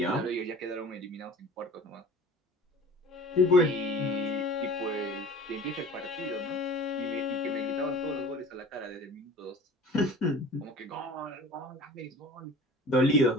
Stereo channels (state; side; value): normal; both; correlation 0.42